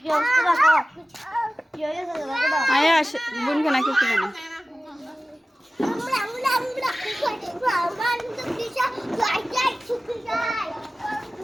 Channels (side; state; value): both; normal; correlation 0.96